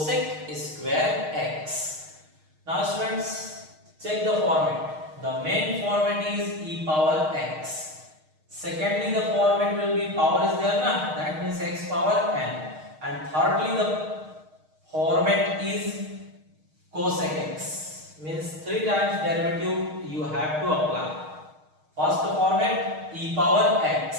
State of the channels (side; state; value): left; late; 6.5 ms